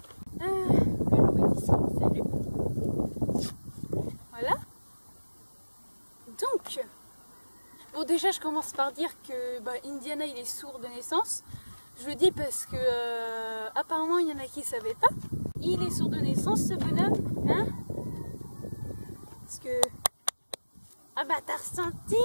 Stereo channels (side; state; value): both; inverted; correlation -1.00